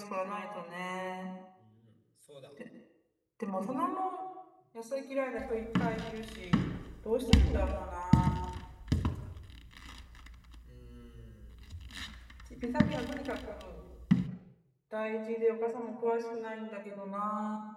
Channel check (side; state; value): both; identical; correlation 1.00